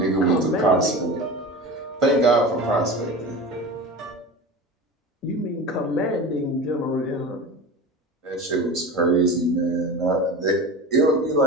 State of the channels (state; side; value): normal; both; correlation 0.31